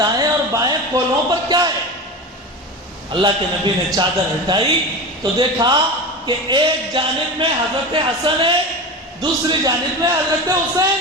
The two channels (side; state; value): both; normal; correlation 0.26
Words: اور بائیں کولہوں پر کیا ہے؟ اللہ کے نبی نے چادر ہٹائی تو دیکھا کہ ایک جانب میں حضرت حسن ہے، دوسری جانب میں حضرت حسین